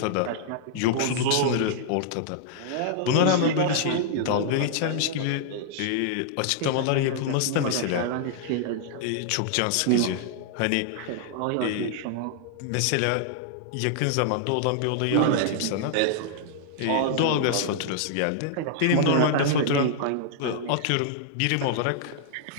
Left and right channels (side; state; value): both; different; correlation -0.01